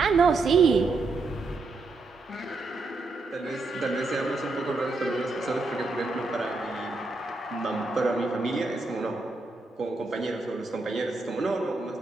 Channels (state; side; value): quieter; left; 3.4 dB